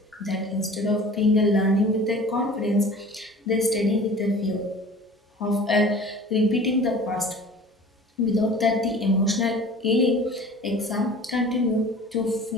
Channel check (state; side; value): normal; both; correlation 0.43